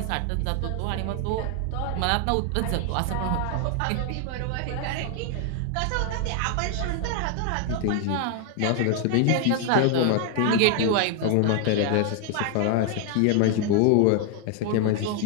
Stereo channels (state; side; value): different; both; correlation 0.00